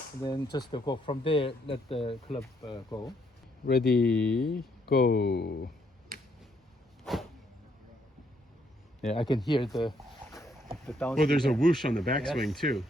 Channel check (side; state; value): both; normal; correlation 0.72